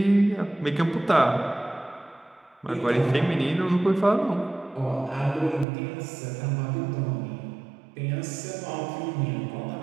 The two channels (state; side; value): drops out; left; at 5.7 s